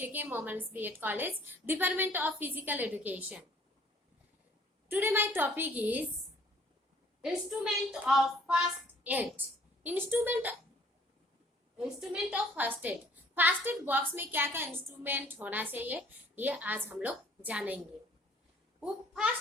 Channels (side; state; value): both; normal; correlation 0.57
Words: Momans B.Ed College, Department of Physical Education. Today my topic is Instrument of First Aid. Instrument of First Aid. First aid box में क्या क्या instrument होना चाहिए ये आज हम लोग जानेंगे. वो